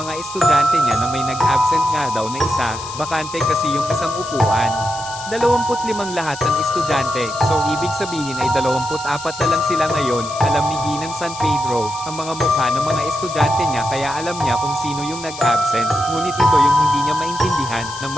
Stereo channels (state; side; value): noise; left; hiss, 12 dB below the sound